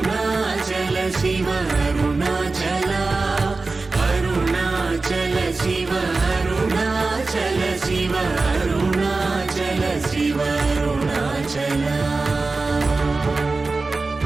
శివ అరుణాచల అరుణాచల శివ అరుణాచల శివ అరుణాచల శివ అరుణాచల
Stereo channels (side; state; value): left; quieter; 3.7 dB